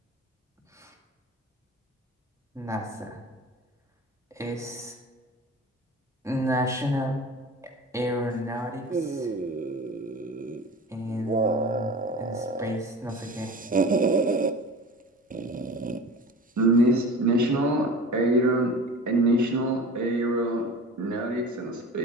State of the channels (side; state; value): both; normal; correlation 0.37